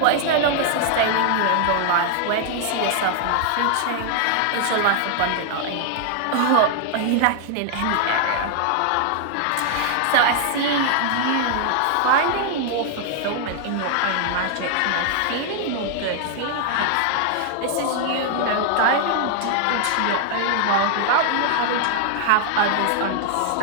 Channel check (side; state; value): both; different; correlation 0.00